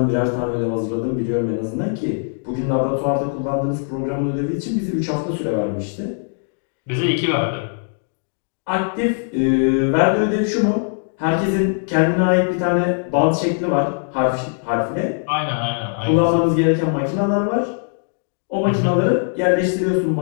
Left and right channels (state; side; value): silent; right; digital silence